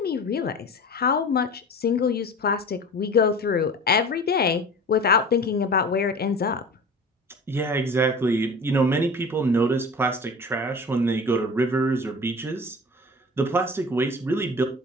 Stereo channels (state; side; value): normal; both; correlation 0.38